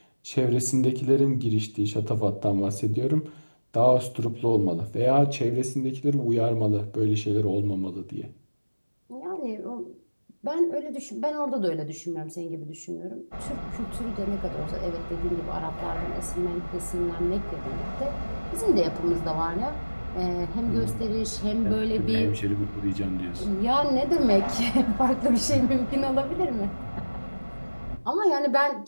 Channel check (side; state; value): both; inverted; correlation -1.00